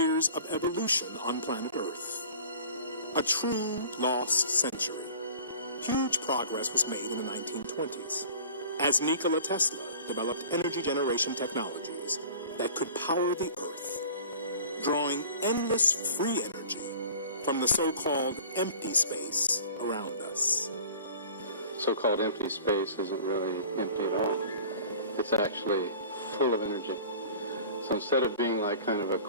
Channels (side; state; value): both; inverted; correlation -0.44